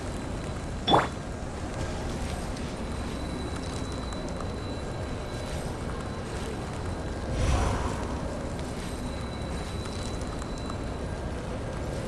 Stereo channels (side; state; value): both; identical; correlation 1.00